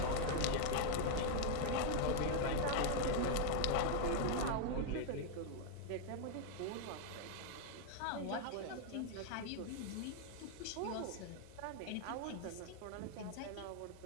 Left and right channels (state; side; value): different; both; correlation 0.00